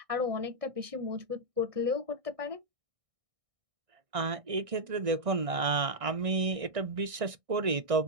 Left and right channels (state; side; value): late; left; 1.6 ms